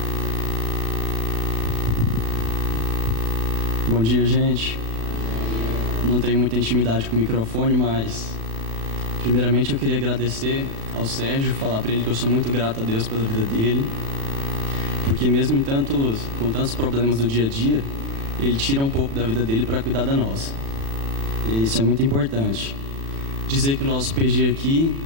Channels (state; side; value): late; left; 36 ms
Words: Bom dia, gente. Não tenho muita intimidade com o microfone, mas primeiramente eu queria agradecer ao Sérgio, falar para ele que eu sou muito grato a Deus pela vida dele, porque mesmo com tantos problemas do dia a dia, ele tira um pouco da vida dele para cuidar da nossa. E isso é muito importante. Dizer que o nosso PG aqui